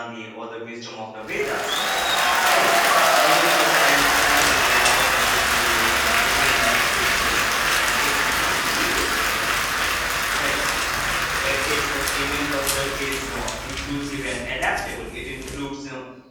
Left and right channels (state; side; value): identical; both; correlation 1.00